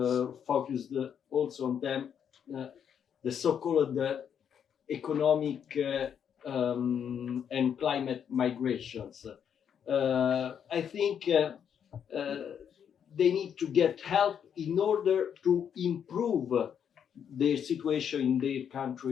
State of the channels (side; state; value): right; quieter; 8.2 dB